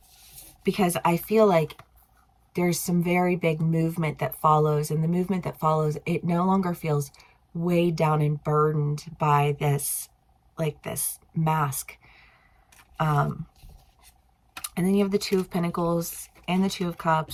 Because I feel like there's some very big movement that follows, and the movement that follows, it no longer feels weighed down and burdened by this, like this mask. And then you have the Two of Pentacles and the Two of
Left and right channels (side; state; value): both; identical; correlation 1.00